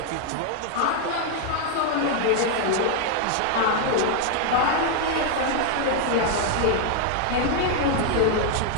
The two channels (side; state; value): both; different; correlation 0.00